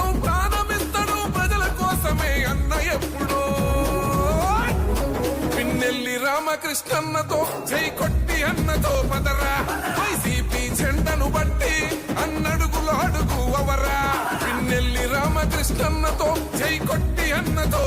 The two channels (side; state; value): both; identical; correlation 1.00